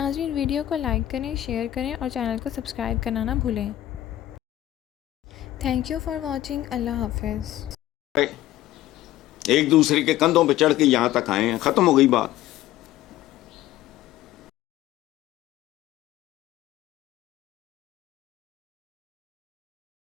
ویڈیو کو لائک کریں، شیئر کریں اور چینل کو سبسکرائب کرنا نہ بھولیں۔ Thank you for watching. اللہ حافظ۔ ایک دوسرے کے کندھوں پہ چڑھ کے یہاں تک آئے ہیں، ختم ہو گئی بات۔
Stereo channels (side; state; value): right; quieter; 14.1 dB